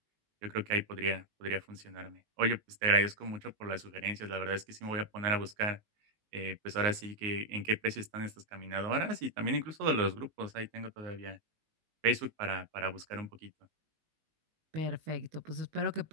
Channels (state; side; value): late; left; 19 ms